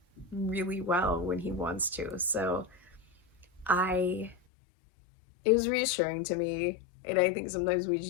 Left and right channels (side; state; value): right; drops out; at 4.4 s